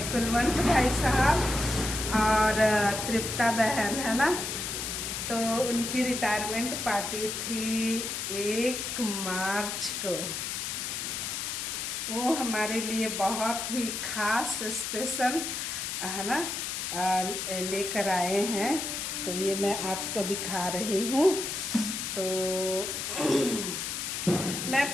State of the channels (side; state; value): left; noise; hiss, 3 dB below the sound